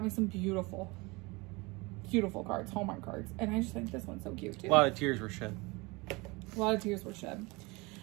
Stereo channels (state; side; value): quieter; left; 25.2 dB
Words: me some beautiful, beautiful cards, Hallmark cards. And I just think this one's so cute too. A lot of tears were shed. A lot of tears were shed.